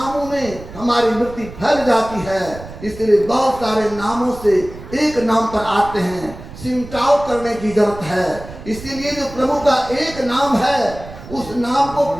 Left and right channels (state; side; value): noise; right; rumble, 14 dB below the sound